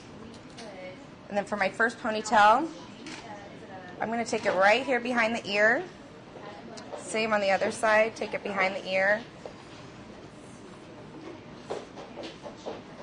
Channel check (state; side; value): identical; both; correlation 1.00